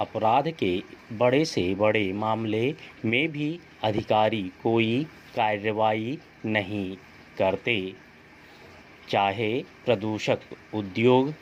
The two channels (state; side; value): identical; both; correlation 1.00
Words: के बड़े से बड़े मामले में भी अधिकारी कोई कार्रवाई नहीं करते, चाहे प्रदूषक उद्योग